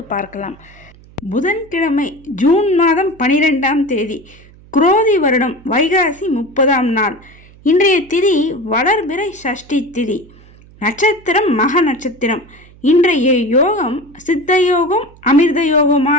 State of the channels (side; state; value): right; noise; hum, 24 dB below the sound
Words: பார்க்கலாம். புதன்கிழமை ஜூன் மாதம் 12ஆம் தேதி, குரோதி வருடம் வைகாசி 30ஆம் நாள். இன்றைய திதி வளர்பிறை சஷ்டி திதி. நட்சத்திரம் மக நட்சத்திரம். இன்றைய யோகம் சித்த யோகம் அமிர்த